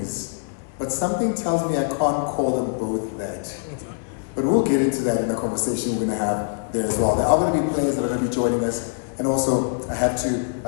but something tells me I can't call them both that. But we'll get into that in the conversation we're going to have there as well. There are going to be players that are going to be joining us. And also, I have to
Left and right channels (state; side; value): silent; right; 63 dB below the other